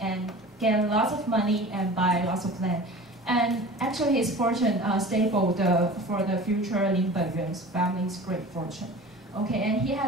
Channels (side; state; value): both; normal; correlation 0.39